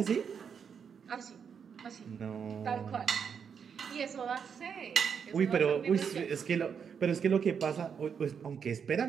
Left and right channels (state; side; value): quieter; left; 6.9 dB